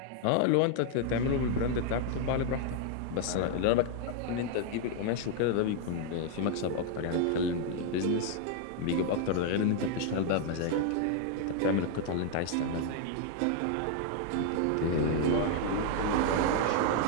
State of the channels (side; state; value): both; different; correlation 0.00